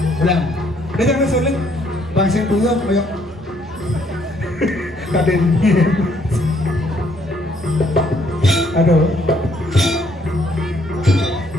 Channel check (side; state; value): both; normal; correlation 0.67